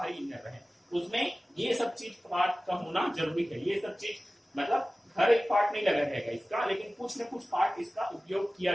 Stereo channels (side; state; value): both; normal; correlation 0.97